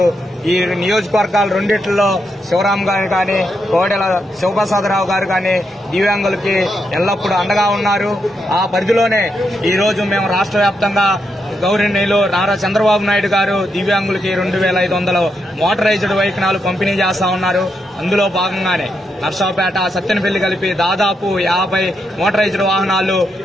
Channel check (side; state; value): both; normal; correlation 0.82